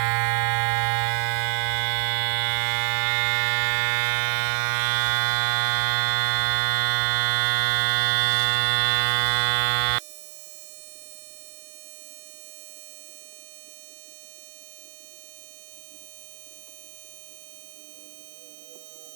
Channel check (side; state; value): left; silent; digital silence